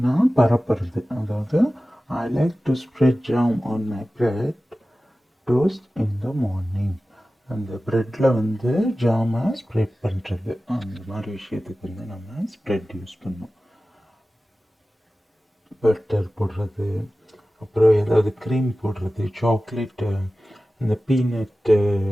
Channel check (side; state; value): both; normal; correlation 0.96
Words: பரப்புறது. அதாவது I like to spread jam on my bread toast in the morning. அந்த ப்ரெட்டில் ஜாமை ஸ்ப்ரெட் பண்ணுறது, அந்த மாதிரி விஷயத்துக்கு நம்ம ஸ்ப்ரெட் யூஸ் பண்ணோம். பட்டர் போடுறது, அப்புறம் ஏதாவது க்ரீம் போடுறது, சாக்லேட்டு, இந்த பீனட்டு